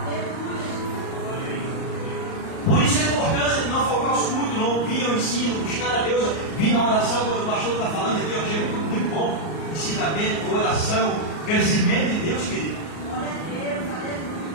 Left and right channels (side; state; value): right; late; 38 ms